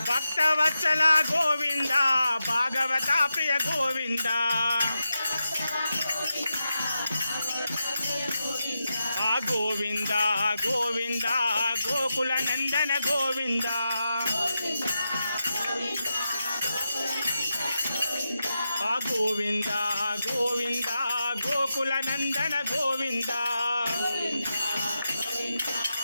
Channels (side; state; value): both; inverted; correlation -0.89